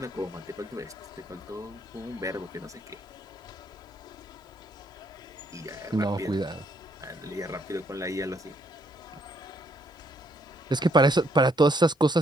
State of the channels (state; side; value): normal; both; correlation 0.71